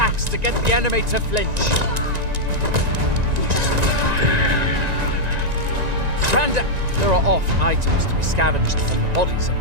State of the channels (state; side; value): late; left; 1.9 ms